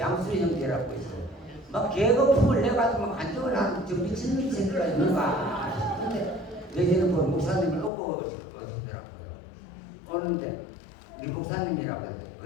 형제라고 있어. 막 계급품을 내가지고 막 안정을 하는 저 미친 새끼가 있는가 싶은데 내지는 뭐 목사님을 놓고 오시더라고요. 오는데 우리 목사님이라고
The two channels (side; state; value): right; drops out; at 7.9 s